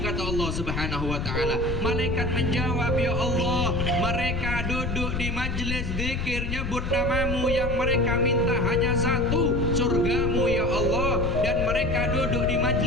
kata Allah Subhanahu wa taala. Malaikat menjawab, ya Allah, mereka duduk di majlis zikir nyebut namamu, yang mereka minta hanya satu, surgamu ya Allah, dan mereka duduk di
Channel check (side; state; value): left; noise; rumble, 3 dB below the sound